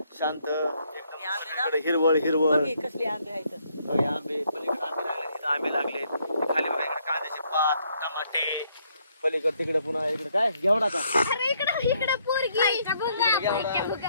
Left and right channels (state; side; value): inverted; both; correlation -0.71